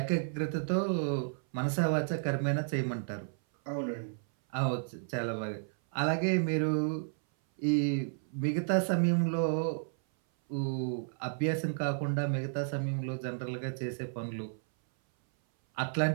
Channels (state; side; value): silent; left; 56 dB below the other